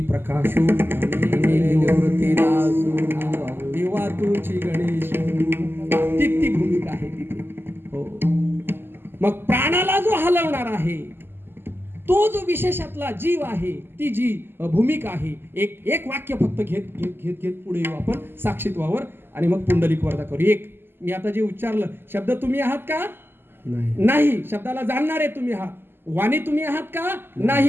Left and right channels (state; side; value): late; left; 0.10 ms